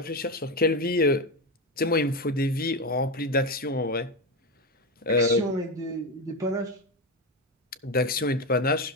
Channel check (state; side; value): normal; both; correlation 0.14